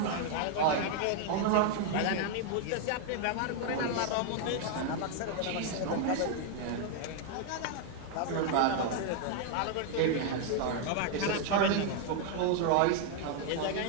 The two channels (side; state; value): both; different; correlation 0.00